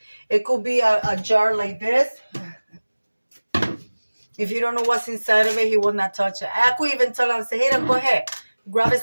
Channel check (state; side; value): inverted; both; correlation -1.00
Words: It could be a jar like this. If you don't know what's inside of it, he will not touch it. I could even tell him, say, hey, go ahead, grab a